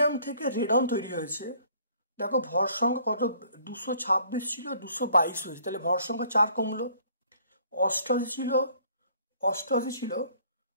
থেকে রেডন তৈরি হয়েছে। দেখো ভর সংখ্যা কত? 226 ছিল, 222 হয়েছে, তাহলে ভর সংখ্যা 4 কমলো। 88 ছিল, 86,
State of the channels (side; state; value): both; inverted; correlation -0.59